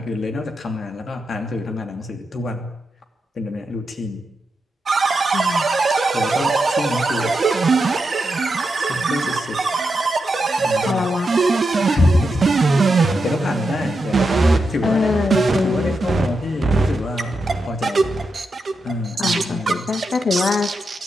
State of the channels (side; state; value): both; normal; correlation 0.86